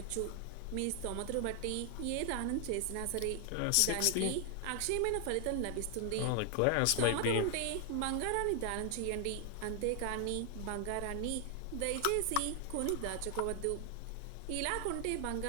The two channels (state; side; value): different; both; correlation 0.00